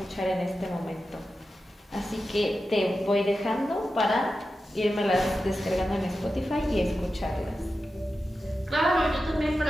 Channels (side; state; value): both; normal; correlation 0.92